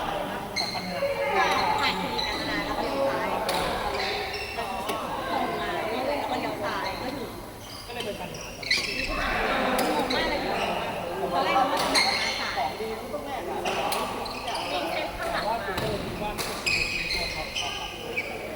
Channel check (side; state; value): both; identical; correlation 1.00